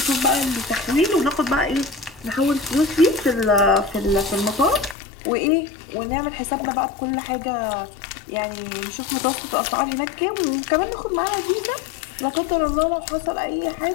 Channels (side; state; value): right; drops out; at 5.0 s